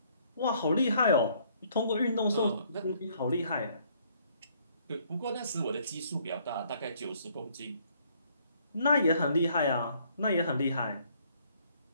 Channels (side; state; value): both; inverted; correlation -0.64